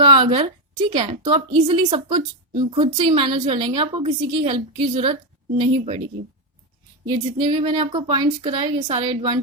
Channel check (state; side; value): normal; both; correlation 0.07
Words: अगर, ठीक है, तो आप इजिली सब कुछ खुद से ही मैनेज कर लेंगे, आपको किसी की हेल्प की जरूरत नहीं पड़ेगी। ये जितने भी मैंने आपको पॉइंट्स कराए, ये सारे